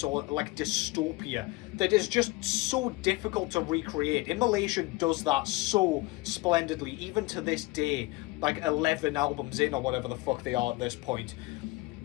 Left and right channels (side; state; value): right; quieter; 21.6 dB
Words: or like dystopia that is just so difficult to recreate. Immolation does that so splendidly, even to this day, like 11 albums in or whatever the fuck they are at this point.